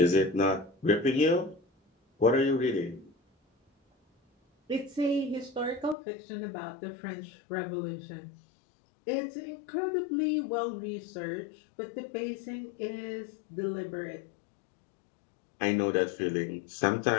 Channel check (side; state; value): right; drops out; at 6.0 s